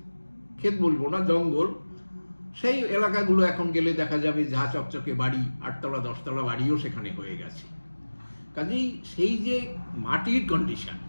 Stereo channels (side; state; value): both; inverted; correlation -1.00